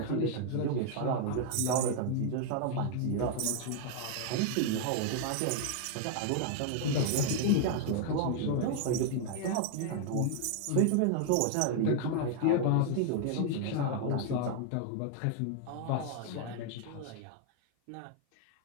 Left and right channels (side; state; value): both; different; correlation 0.00